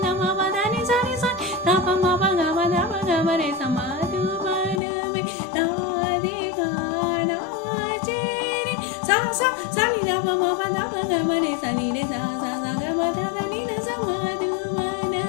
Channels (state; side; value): drops out; right; at 4.8 s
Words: nama badani sani sani tapa ma baga bada baga bare samadhubana mera dikana jere sa sa sani nama ma bada baga bare sani re sa sa sa ga bada ni na samadhubana